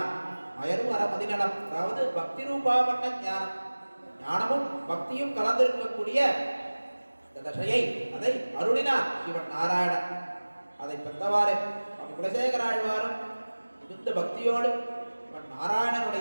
மயர்வர மதிநலம், அதாவது பக்தி ரூபாபண்ண ஞானம், ஞானமும் பக்தியும் கலந்திருக்கக்கூடிய இந்த தசையை அதை அருளினார் இவன் நாராயணன். அதை பெற்றவாறு குலசேகர ஆழ்வாரும் மிகுந்த பக்தியோடு இவன்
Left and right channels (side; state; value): both; inverted; correlation -1.00